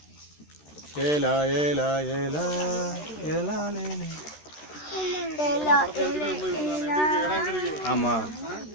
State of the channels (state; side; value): late; right; 13 ms